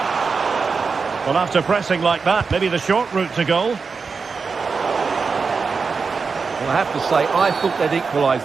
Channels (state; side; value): quieter; left; 5.0 dB